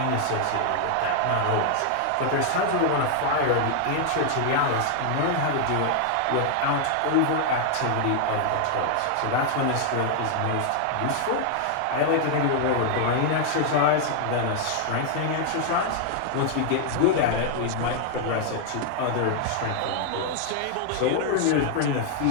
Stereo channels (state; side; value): different; both; correlation 0.00